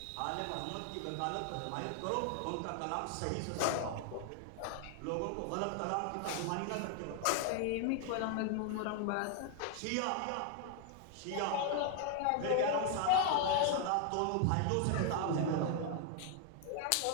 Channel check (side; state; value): both; different; correlation 0.00